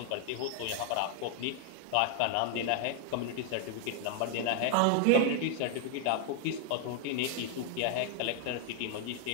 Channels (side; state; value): both; different; correlation 0.00